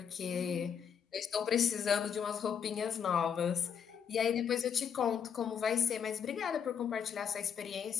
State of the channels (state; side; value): quieter; right; 7.6 dB